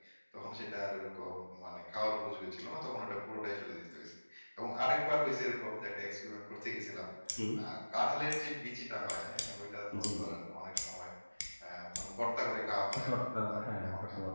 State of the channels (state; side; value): inverted; both; correlation -1.00